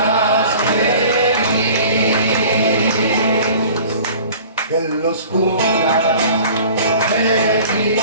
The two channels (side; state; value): both; inverted; correlation -0.45